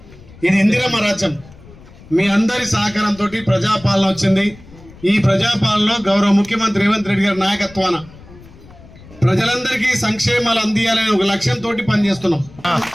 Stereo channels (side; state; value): left; noise; rumble, 21 dB below the sound